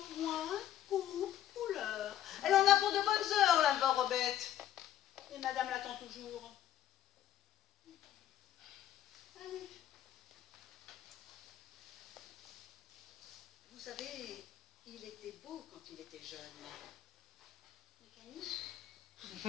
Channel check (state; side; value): quieter; right; 11.9 dB